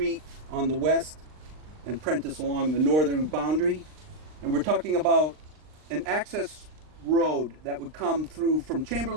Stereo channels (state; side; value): late; left; 39 ms